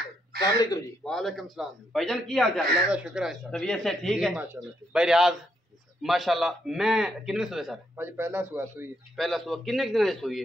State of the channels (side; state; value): both; normal; correlation 0.77